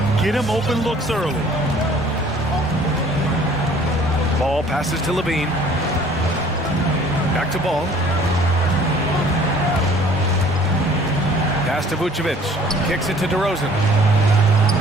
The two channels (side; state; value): both; normal; correlation 0.53